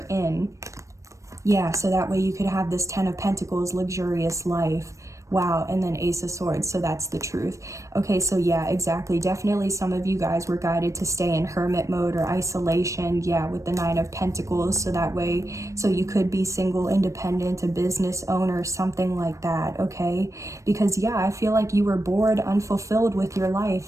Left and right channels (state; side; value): late; left; 0.15 ms